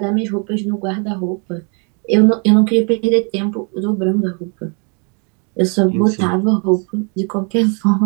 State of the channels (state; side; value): quieter; left; 36.2 dB